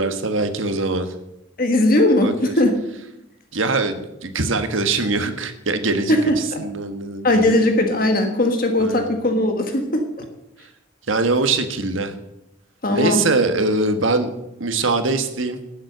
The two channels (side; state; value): both; normal; correlation 0.28